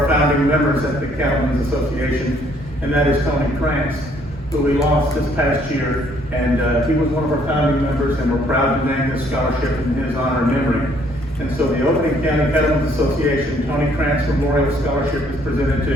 founding members at the Cattlemen's Association, and that is Tony Krantz, who we lost this past year. And he was one of our founding members, and we're proud to name this scholarship in his honor and memory. And so the Overton County Cattlemen's Association Tony Krantz Memorial Scholarship is presented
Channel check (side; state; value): both; normal; correlation 0.64